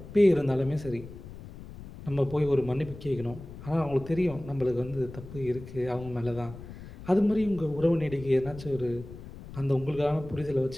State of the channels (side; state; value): left; noise; rumble, 14 dB below the sound